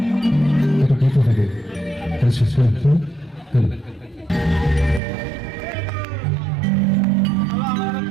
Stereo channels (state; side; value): drops out; left; at 5.0 s